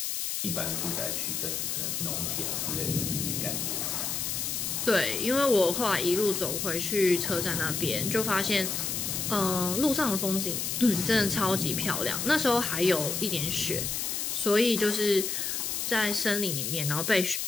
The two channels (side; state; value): left; noise; hiss, 2 dB below the sound